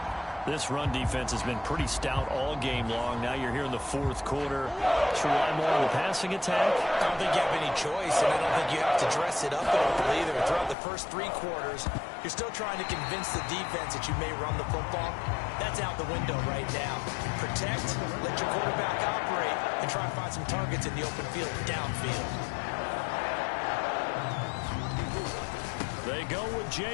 This run defense has been pretty stout all game long. Now you're here in the 4th quarter. Should rely more on the passing attack? I don't think you have any choice, and I don't think you have to dress it up at all either. Throughout the first 3 quarters, You're still trying to convince the defense that you may run the football. That's out the window right now. Protect, let your quarterback operate, and try to find some targets in the open field downfield. They go with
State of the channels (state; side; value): drops out; right; at 10.8 s